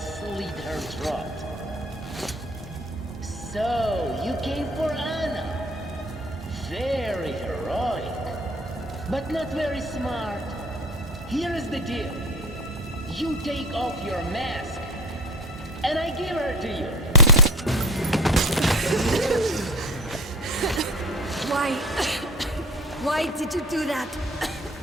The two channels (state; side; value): normal; both; correlation 0.39